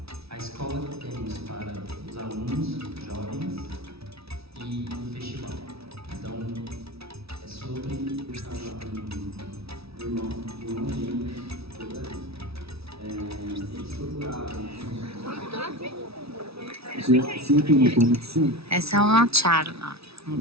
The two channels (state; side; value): late; left; 0.77 ms